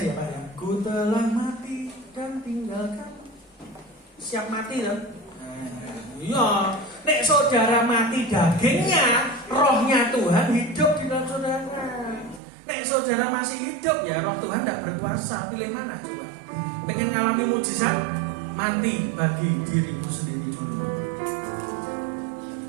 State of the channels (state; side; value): drops out; left; at 12.4 s